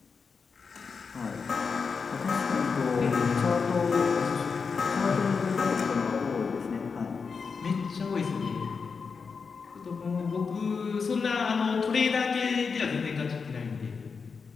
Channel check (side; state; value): right; quieter; 5.3 dB